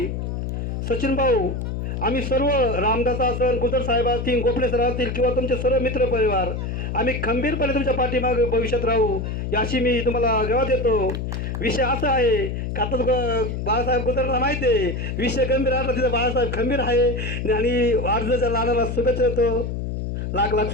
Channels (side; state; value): left; noise; hum, 3 dB below the sound